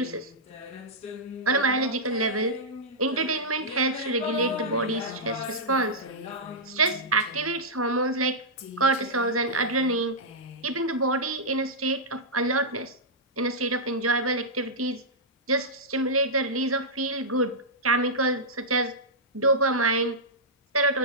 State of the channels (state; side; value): normal; both; correlation -0.11